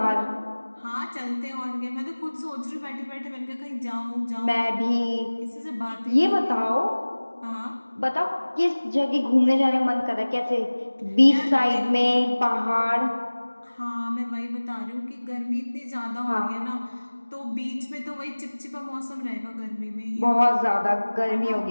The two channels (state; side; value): inverted; both; correlation -1.00